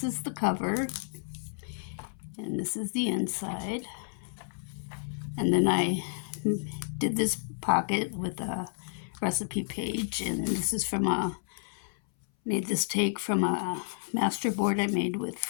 is the cover, and this is the inside. And then I did this pocket with a recipe page, and this is from made this take from a master board I made with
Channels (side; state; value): right; silent; 57 dB below the other